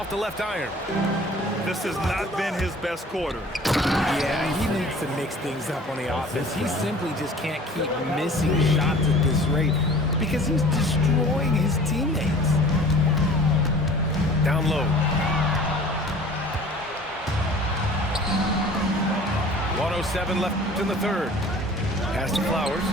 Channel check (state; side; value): normal; both; correlation 0.46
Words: the left iron. This has not been his best quarter. Yeah, he needs to mix things up on the offense. He simply just can't keep missing shots at this rate because he's destroying his teammates. Down low. 1:07 left in the third. Pass to Flowers.